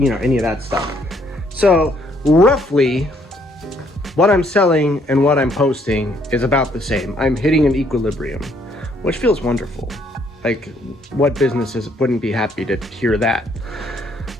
of that stuff. So roughly what I'm selling and what I'm posting is about the same. I'm hitting an equilibrium, which feels wonderful. Like, what businesses wouldn't be happy to hear that?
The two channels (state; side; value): normal; both; correlation 0.67